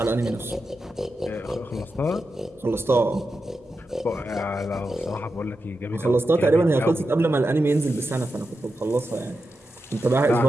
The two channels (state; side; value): normal; both; correlation 0.89